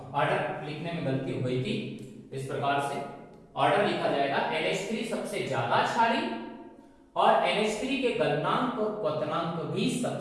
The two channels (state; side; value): identical; both; correlation 1.00